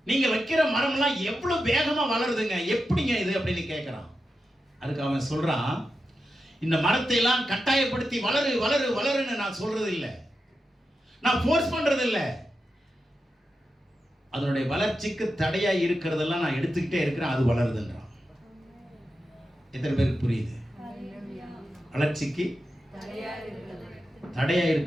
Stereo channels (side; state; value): both; normal; correlation 0.89